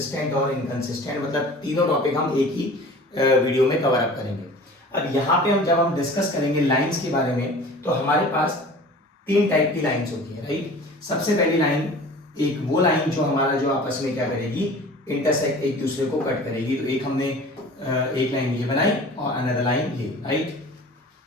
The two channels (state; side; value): normal; both; correlation 0.42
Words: और इनकंसिस्टेंट, मतलब तीनों टॉपिक हम एक ही वीडियो में कवर अप करेंगे। अब यहाँ पे जब हम डिस्कस करेंगे लाइंस के बारे में, तो हमारे पास तीन टाइप की लाइंस होती है, राइट। सबसे पहली लाइन, एक वो लाइन जो आपस में क्या करेगी, इंटरसेक्ट, एक दूसरे को कट करेगी। तो एक हमने एक लाइन ये बनाई और अनदर लाइन ये, राइट।